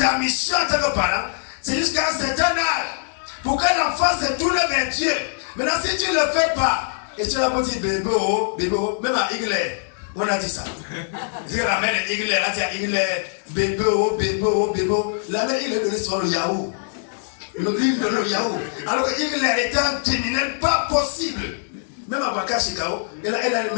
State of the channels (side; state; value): right; silent; digital silence